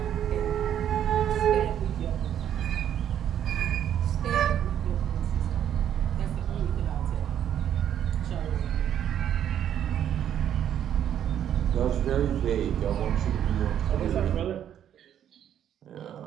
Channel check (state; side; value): quieter; left; 10.0 dB